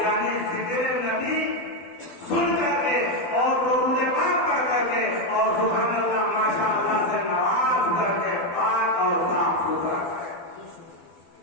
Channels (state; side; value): late; right; 12 ms